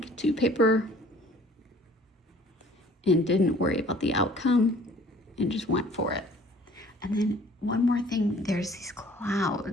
to paper and didn't worry about the outcome and just went for it. And then one more thing, there's these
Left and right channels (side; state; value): both; normal; correlation 0.53